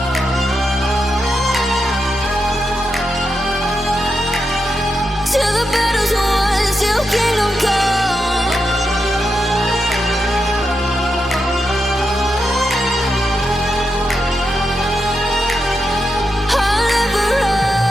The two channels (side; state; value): both; normal; correlation 0.86